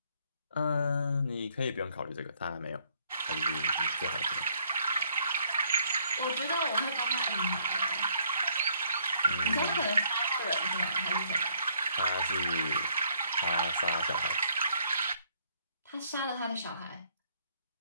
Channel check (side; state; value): both; inverted; correlation -0.66